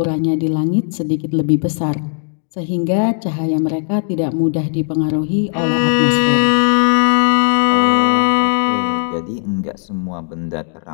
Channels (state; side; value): silent; right; digital silence